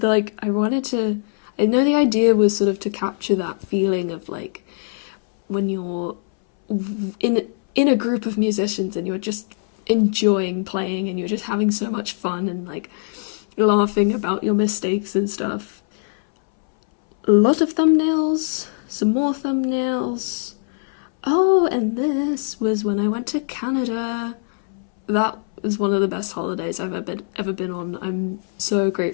like I know the idea was sort of to capture that feeling of like when you're in a group of musicians and you're just enjoying playing and you're just having so much fun and like laughing about your mistakes and stuff. A lot of thumbnails, some more thumbnails. Oh, and this was when I went to Canada. That was one of the best holidays I've ever been on. I'm so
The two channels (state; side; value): silent; right; 62 dB below the other